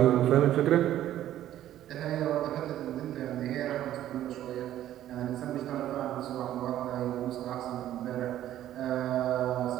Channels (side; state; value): left; quieter; 12.5 dB